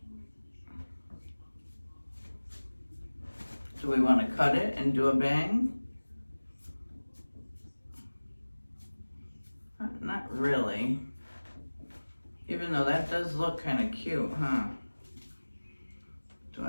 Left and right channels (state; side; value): inverted; both; correlation -1.00